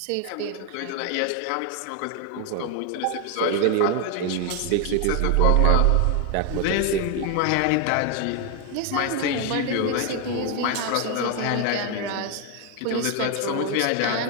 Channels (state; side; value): different; both; correlation 0.01